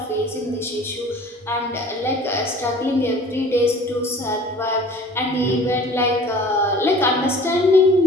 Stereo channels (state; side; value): normal; both; correlation 0.46